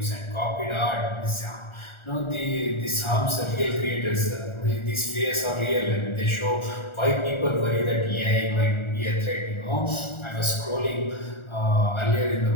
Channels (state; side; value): late; right; 1.4 ms